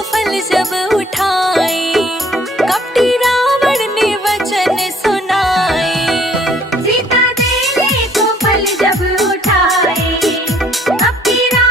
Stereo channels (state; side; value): normal; both; correlation 0.60